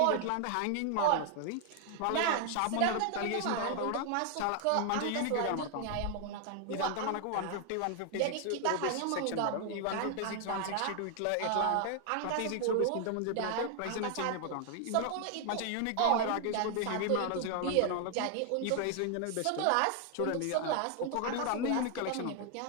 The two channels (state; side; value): different; both; correlation 0.00